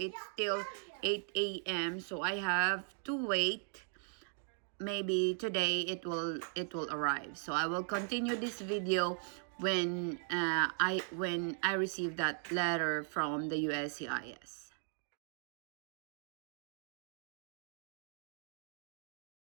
still 8 a.m. so I have to wait. Maybe today it will arrive. So I will continue this video when I receive that letter from the USCIS.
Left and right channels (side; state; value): left; silent; 52 dB below the other